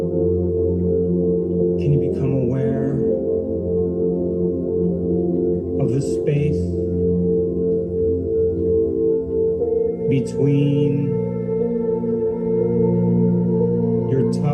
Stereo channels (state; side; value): identical; both; correlation 1.00